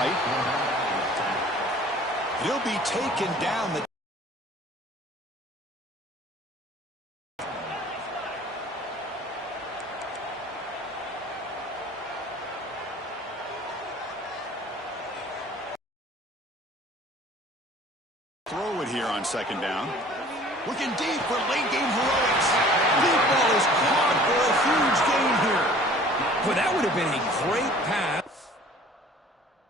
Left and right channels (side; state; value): both; normal; correlation 0.49